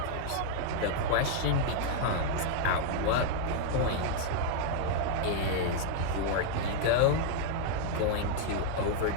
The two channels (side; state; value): both; different; correlation -0.01